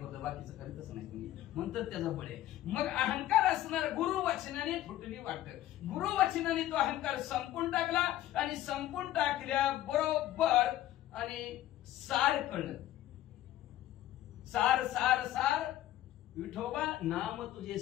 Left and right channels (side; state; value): right; quieter; 13.7 dB